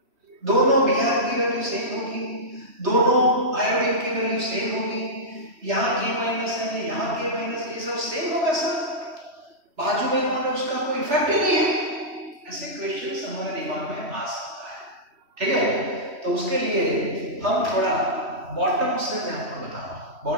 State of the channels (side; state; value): left; late; 3.1 ms